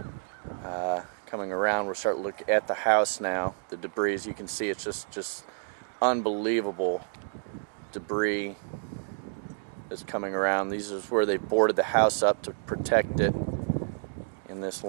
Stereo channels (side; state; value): left; silent; digital silence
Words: Coming around, we'll start to look at the house now. The debris, as you can see, it's just unbelievable debris that's coming around. These is where they boarded the house up to protect it in this